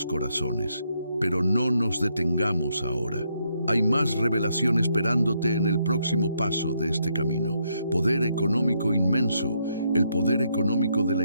corazones. Pero no nos detengamos ahora. Hay más revelación esperándote en el próximo paso de este camino. Poder económico inmenso. El poder económico de la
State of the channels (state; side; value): inverted; both; correlation -0.76